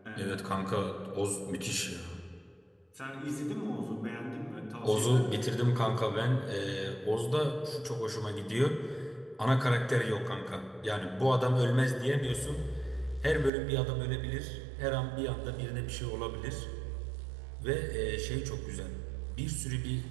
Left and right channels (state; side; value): drops out; left; at 13.5 s